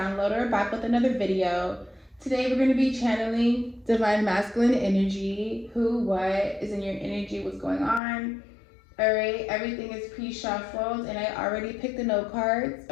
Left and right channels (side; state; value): right; drops out; at 8.0 s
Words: back with another video. Today we're going to be channeling Divine Masculine Energy, who, what is in your energy, what's going on. Alright, everything is pre-shuffled and I already picked the note cards,